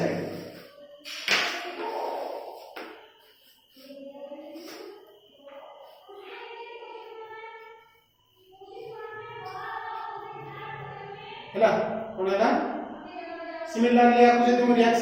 हैला कोनला सिमिलरली आपको जदि हम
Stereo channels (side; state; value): both; identical; correlation 1.00